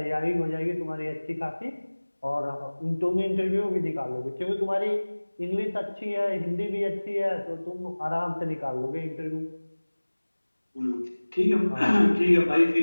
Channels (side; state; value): both; inverted; correlation -1.00